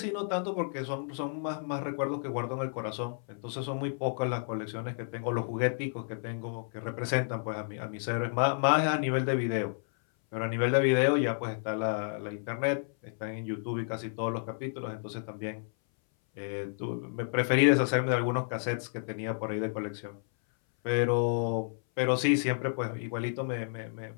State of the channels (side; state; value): right; silent; 57 dB below the other